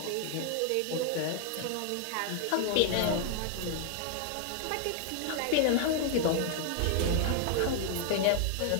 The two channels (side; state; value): both; different; correlation 0.00